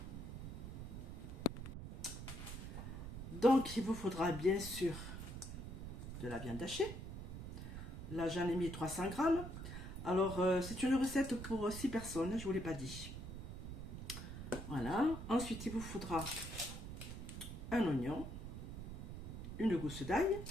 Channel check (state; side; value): noise; right; rumble, 8 dB below the sound